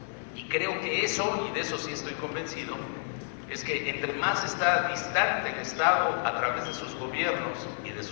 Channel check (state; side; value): silent; right; digital silence